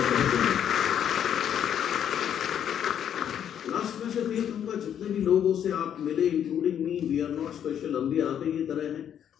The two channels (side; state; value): right; quieter; 9.3 dB